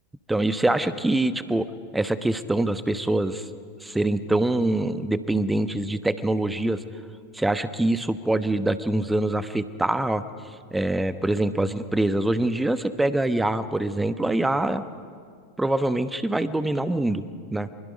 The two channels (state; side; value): normal; both; correlation 0.90